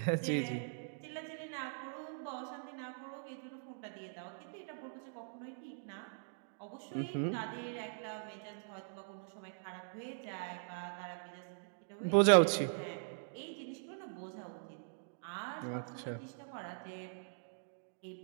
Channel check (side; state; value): left; silent; digital silence